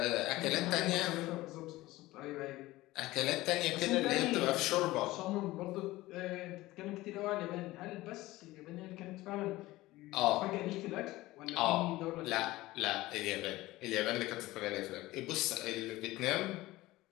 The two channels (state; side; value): quieter; right; 18.2 dB